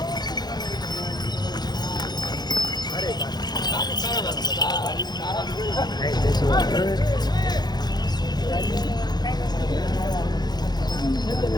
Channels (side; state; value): right; late; 0.20 ms